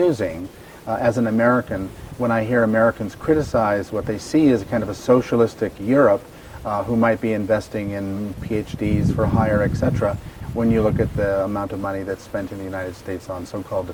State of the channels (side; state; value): both; identical; correlation 1.00